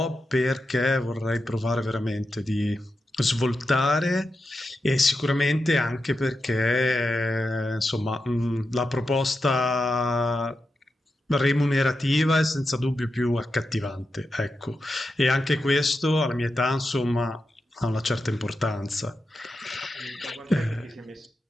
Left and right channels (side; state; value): both; normal; correlation 0.89